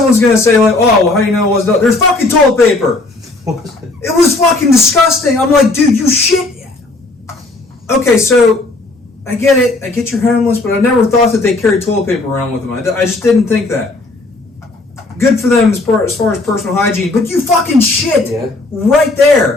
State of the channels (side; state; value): right; quieter; 3.1 dB